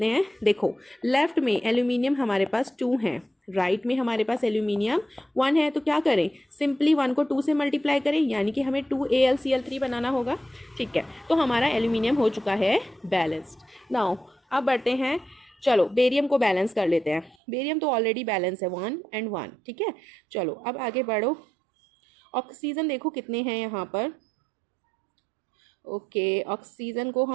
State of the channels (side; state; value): left; drops out; at 17.4 s